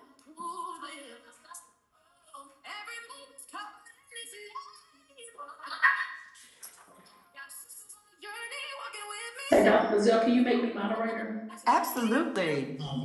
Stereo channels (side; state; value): both; identical; correlation 1.00